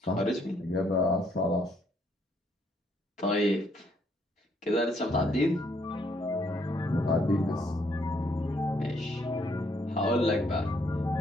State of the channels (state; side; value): normal; both; correlation 0.70